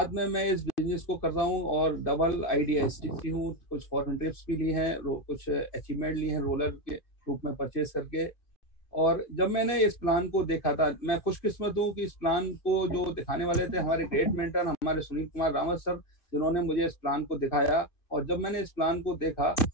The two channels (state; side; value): late; right; 2.5 ms